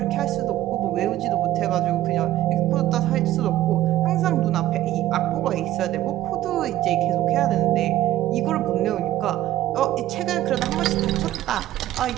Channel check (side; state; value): left; quieter; 14.2 dB